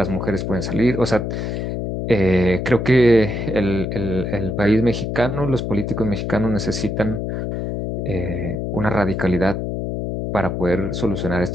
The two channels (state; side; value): noise; left; hum, 3 dB below the sound